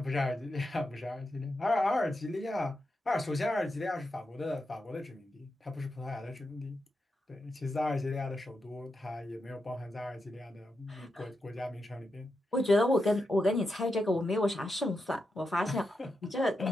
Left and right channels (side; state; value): both; normal; correlation 0.87